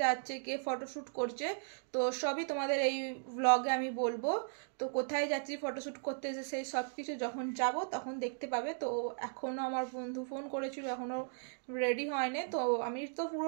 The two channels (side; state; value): left; silent; digital silence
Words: যাচ্ছে, কে ফটোশ্যুট করছে, তো সবই তোমাদের এই ব্লগে আমি বলবো। তো কোথায় যাচ্ছি ফটোশ্যুট করতে, সেই সব কিছু যখন যাব তখন দেখতে পাবে। তো এখনও আমার বন্ধু ফোন করেছিল, এখনও রেডি হয়নি। তো আমি তো